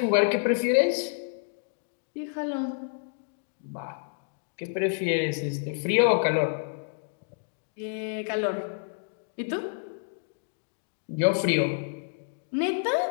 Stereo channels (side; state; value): right; silent; digital silence